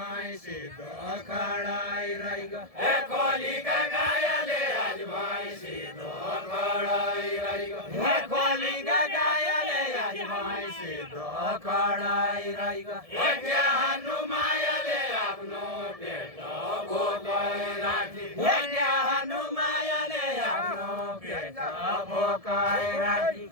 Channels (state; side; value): late; left; 1.7 ms